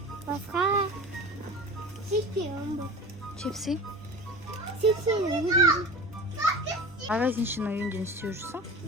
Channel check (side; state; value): both; normal; correlation 0.34